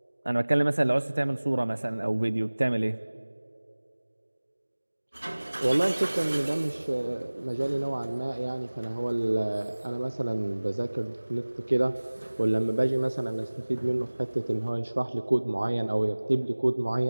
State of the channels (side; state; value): both; inverted; correlation -1.00